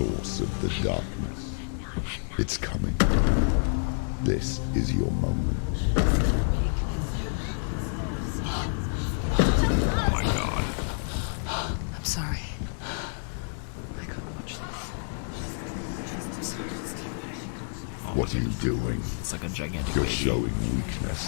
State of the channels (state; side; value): silent; right; digital silence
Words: of the darkness. It's coming. This is your moment. Oh my god. I'm sorry. I can't watch this. What are you doing? It's like a gigantic You're baby. showing